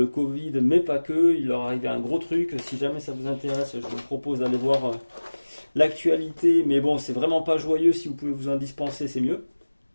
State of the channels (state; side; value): inverted; both; correlation -1.00